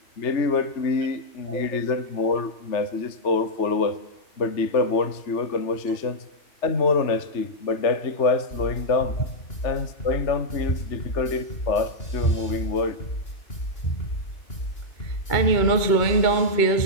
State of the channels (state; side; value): late; right; 2.8 ms